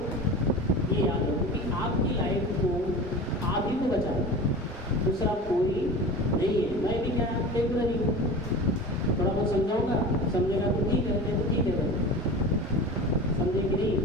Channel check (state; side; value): normal; both; correlation 0.34